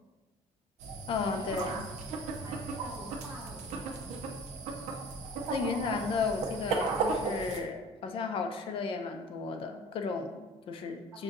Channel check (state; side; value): normal; both; correlation 0.43